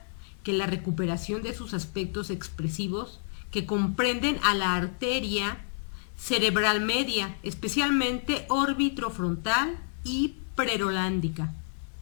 que la recuperación de sus aspectos expresivos que comprenden a la arteria cerebral media, especialmente órbitofrontal y prerolándica.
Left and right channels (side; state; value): right; silent; 59 dB below the other